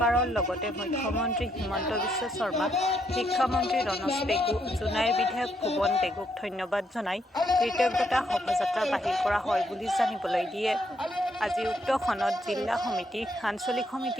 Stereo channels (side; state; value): both; normal; correlation 0.75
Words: লগতে মুখ্যমন্ত্ৰী হিমন্ত বিশ্ব শৰ্মা, শিক্ষামন্ত্ৰী ৰণোজ পেগু, জোনাইৰ বিধায়ক ভুৱন পেগুক ধন্যবাদ জনাই কৃতজ্ঞতা শোভাযাত্ৰা বাহিৰ কৰা হয় বুলি জানিবলৈ দিয়ে। আজি উক্ত খনত জিলা সমিতি, আঞ্চলিক